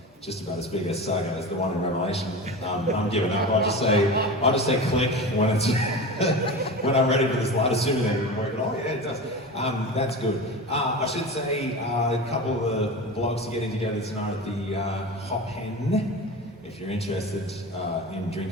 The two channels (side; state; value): both; normal; correlation 0.29